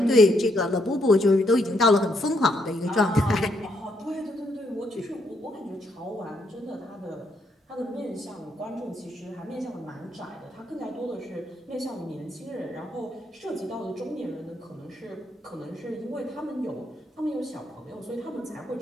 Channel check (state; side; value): normal; both; correlation 0.74